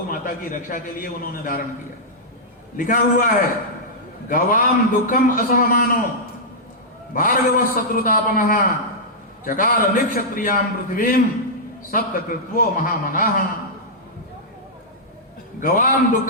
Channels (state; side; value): normal; both; correlation -0.10